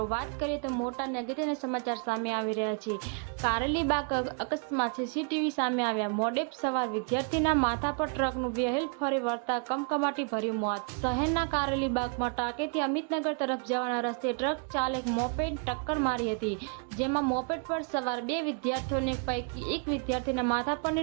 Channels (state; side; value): quieter; left; 37.8 dB